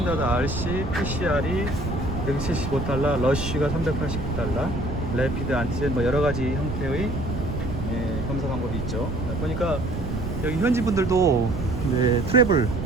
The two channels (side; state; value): right; noise; rumble, 5 dB below the sound